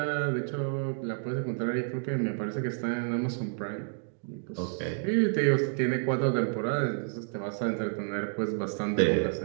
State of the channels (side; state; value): left; silent; 58 dB below the other